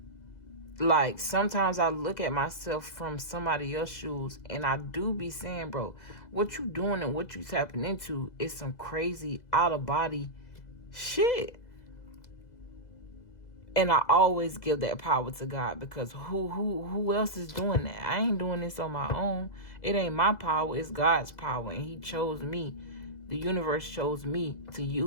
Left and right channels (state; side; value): late; right; 2.0 ms